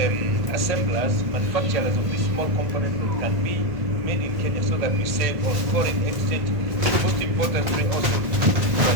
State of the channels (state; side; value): late; left; 1.5 ms